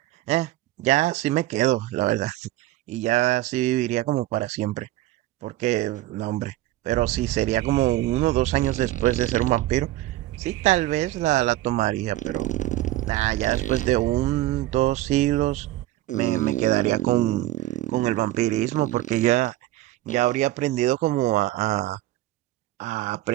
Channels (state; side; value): quieter; left; 15.8 dB